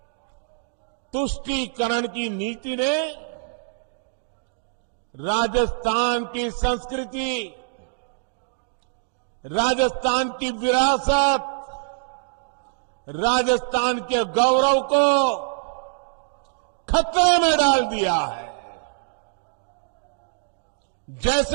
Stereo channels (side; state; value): left; silent; digital silence